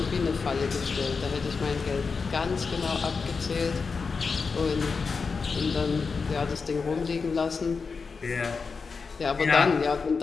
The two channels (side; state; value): right; quieter; 4.9 dB